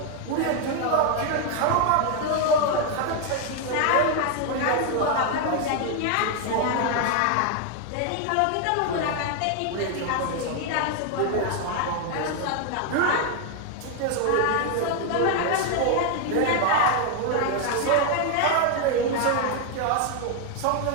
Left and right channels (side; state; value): both; different; correlation 0.01